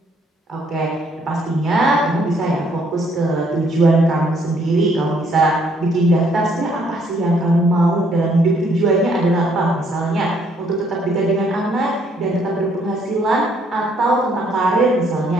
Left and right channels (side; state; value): both; normal; correlation 0.67